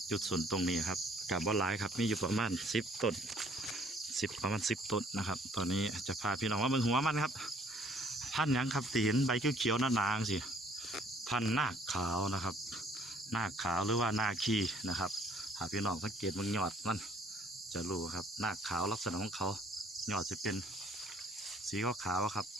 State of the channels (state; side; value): normal; both; correlation 0.60